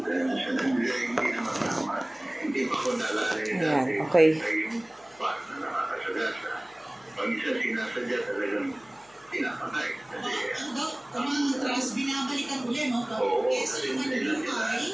Hindi naman tama. Hindi pa ko nalala Ayan, okay. yung part na nakakasagasa. Pag isa sinasadya talagang pinapatay. Ang trust, binabalikan ulit, no? Kasi naman yung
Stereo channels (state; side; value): noise; left; hum, 30 dB below the sound